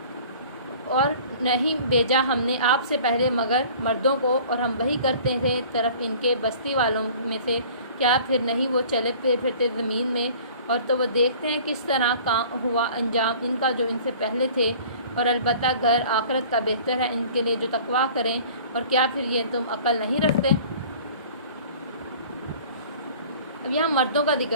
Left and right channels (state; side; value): inverted; both; correlation -0.47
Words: اور نہیں بھیجا ہم نے آپ سے پہلے مگر مردوں کو, اور ہم وہی کرتے تھے طرف ان کے بستی والوں میں سے. کیا پھر نہیں وہ چلے پھرتے زمین میں, اور تو وہ دیکھتے ہیں کس طرح ہوا انجام ان کا جو ان سے پہلے تھے. اور البتہ گھر آخرت کا بہتر ہے ان کے لیے جو تقویٰ کریں. اور کیا پھر یہ تم عقل نہیں رکھتے. اب یہاں مردوں کا